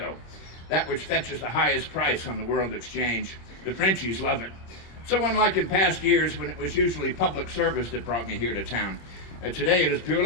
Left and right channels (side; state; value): right; late; 26 ms